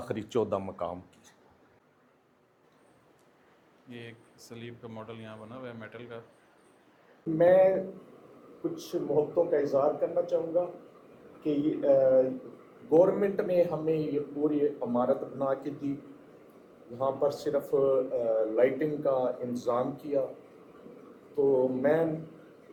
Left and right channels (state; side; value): identical; both; correlation 1.00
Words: 14 مقام کی یہ ایک سلیب کا ماڈل یہاں بنا ہوا ہے میٹل کا. میں کچھ محبتوں کا اظہار کرنا چاہوں گا کہ گورنمنٹ نے ہمیں یہ پوری عمارت بنا کے دی. یہاں پر صرف لائٹنگ کا انتظام کیا. تو میں